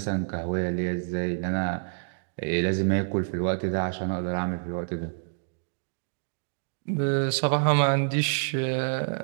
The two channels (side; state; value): left; silent; digital silence